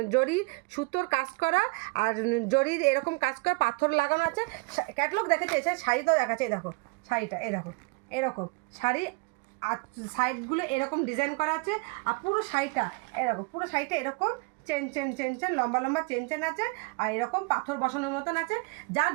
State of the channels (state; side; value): quieter; left; 30.1 dB